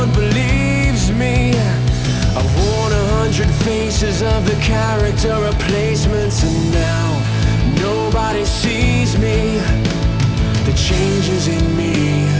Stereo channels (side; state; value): both; identical; correlation 1.00